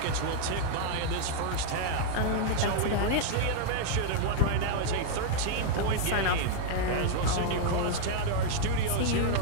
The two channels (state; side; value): different; both; correlation -0.01